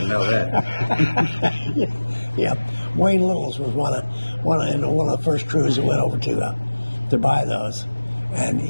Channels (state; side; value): inverted; both; correlation -1.00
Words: know that. Yeah. Wayne Littles was one of the first crews that went over to buy those. And